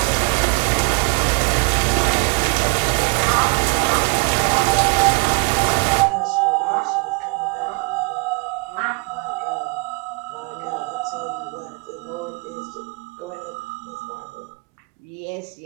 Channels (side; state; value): left; quieter; 31.0 dB